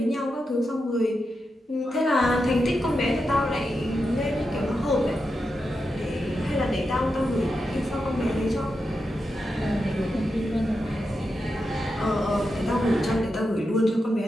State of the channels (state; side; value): normal; both; correlation 0.88